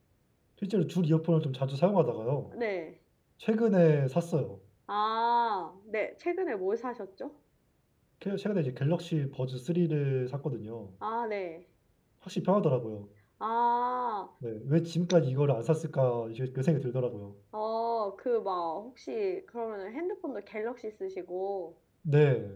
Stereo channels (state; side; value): identical; both; correlation 1.00